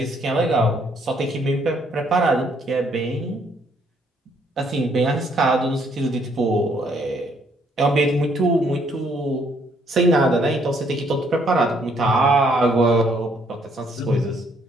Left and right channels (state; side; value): normal; both; correlation 0.68